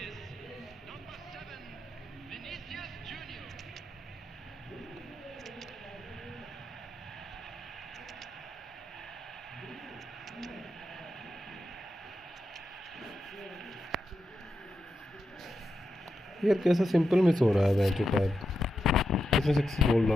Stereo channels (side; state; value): both; normal; correlation 0.87